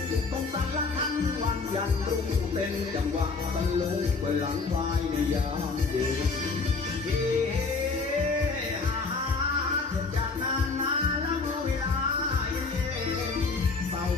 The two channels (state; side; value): quieter; right; 4.2 dB